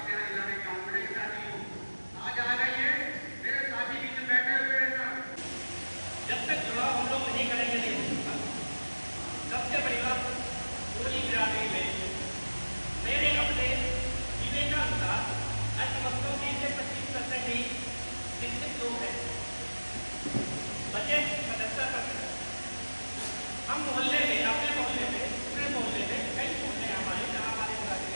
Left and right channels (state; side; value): inverted; both; correlation -1.00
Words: सबसे बड़ी बात पूरी बिरादरी में मेरे अपने विवेकानुसार अर्थव्यवस्था में से 25% ही शिक्षित लोग हैं, बचे 77%। हम मोहल्ले में, अपने मोहल्ले में, पूरे मोहल्ले में, कई मोहल्ले हमारे जहाँ हमारे बिरादरी